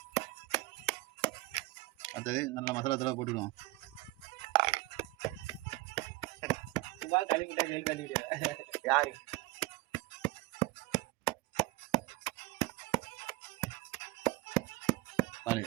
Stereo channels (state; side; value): quieter; left; 19.9 dB